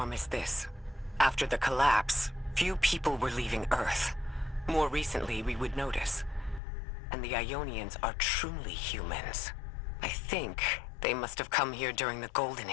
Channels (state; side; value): drops out; right; at 6.6 s